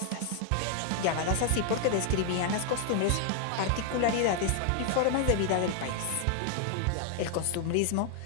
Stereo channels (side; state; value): both; different; correlation 0.00